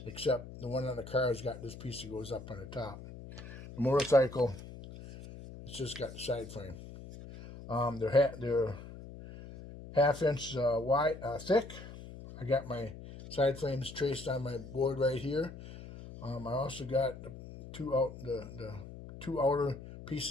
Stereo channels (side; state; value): left; noise; hum, 14 dB below the sound